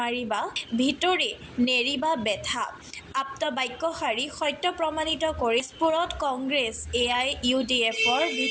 ভিতৰি নেৰিবা বেথা আপ্ত বাক্যশাৰী সত্য প্ৰমাণিত কৰি স্ফুৰত কংগ্ৰেছ AIUDFৰ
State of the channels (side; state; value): both; identical; correlation 1.00